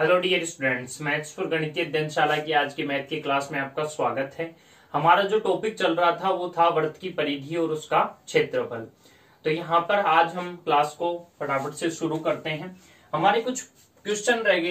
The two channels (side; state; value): both; identical; correlation 1.00